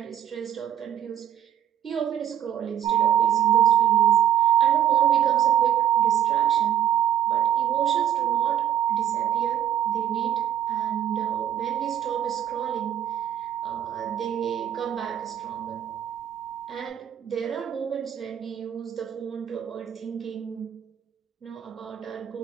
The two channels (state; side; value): quieter; left; 10.6 dB